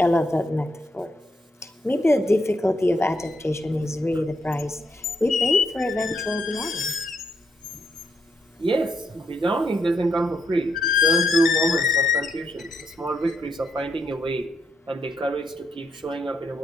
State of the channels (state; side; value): normal; both; correlation 0.78